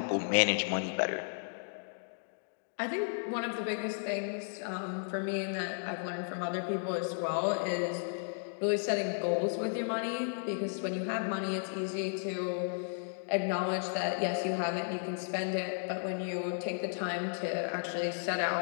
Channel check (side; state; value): right; silent; digital silence